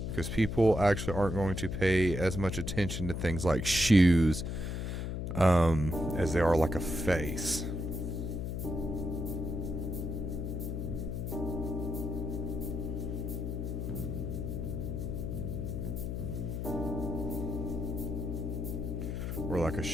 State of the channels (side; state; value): left; noise; hum, 3 dB below the sound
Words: because people actually aren't going to pay as much attention to things like shoes as they are like a face. Or like a